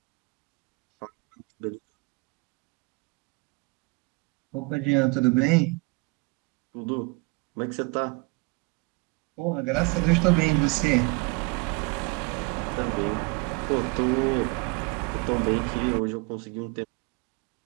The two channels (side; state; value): left; quieter; 27.9 dB